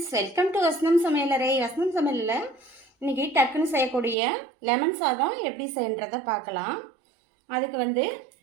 welcome to வசனம் சமையலறை. வசனம் சமையலில் இன்றைக்கி டக்குன்னு செய்யக்கூடிய லெமன் சாதம் எப்படி செய்யன்றதை பார்க்கலாம். அதுக்கு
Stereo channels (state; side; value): drops out; left; at 4.2 s